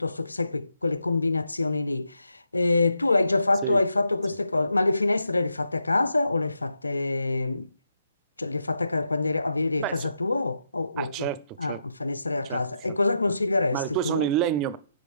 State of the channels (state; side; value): inverted; both; correlation -0.81